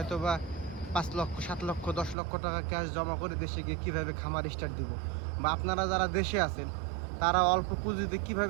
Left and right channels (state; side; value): drops out; left; at 2.1 s